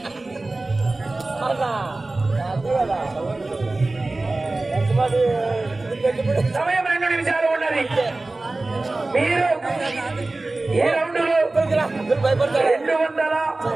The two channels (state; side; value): quieter; left; 3.1 dB